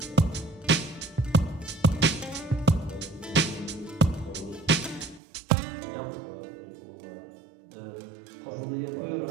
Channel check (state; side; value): drops out; left; at 5.2 s